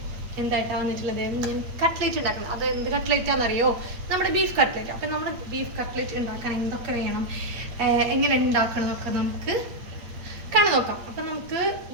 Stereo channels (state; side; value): late; left; 8.5 ms